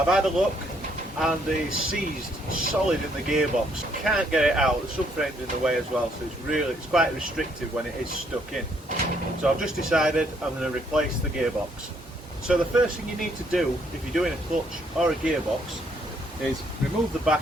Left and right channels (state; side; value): normal; both; correlation 0.69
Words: had a look and it's seized solid in the gearbox. Can't get it out. The subframe's in the way as well, so it's quite restrictive when it is stuck in. So I've just decided I'm going to replace the gearbox. So the first thing you need to do if you're doing a clutch or a gearbox is remove the